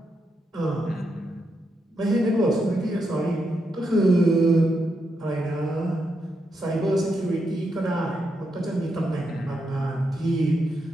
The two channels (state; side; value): normal; both; correlation 0.82